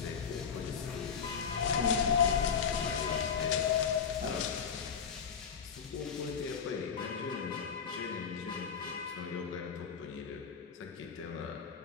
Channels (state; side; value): quieter; right; 6.8 dB